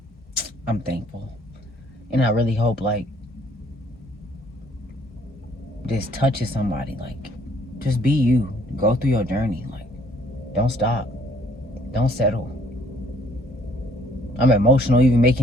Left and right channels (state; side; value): normal; both; correlation 0.62